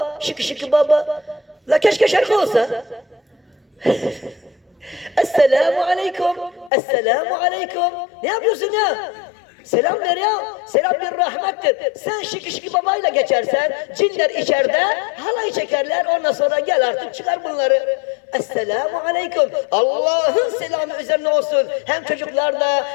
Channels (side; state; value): right; drops out; at 6.7 s